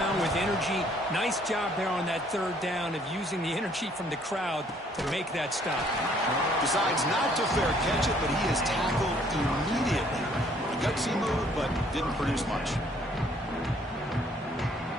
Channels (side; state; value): both; normal; correlation 0.62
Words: with energy. Nice job there on that 3rd down of using the energy from the crowd to make that stop. Decides not to fair catch it, but he is tackled immediately. A gutsy move, but didn't produce much.